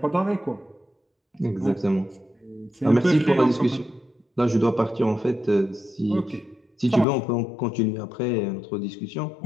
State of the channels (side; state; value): right; drops out; at 7.1 s